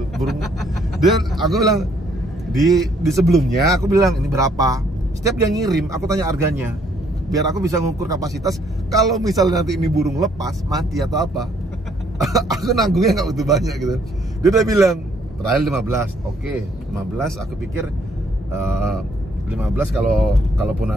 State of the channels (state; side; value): normal; both; correlation 0.66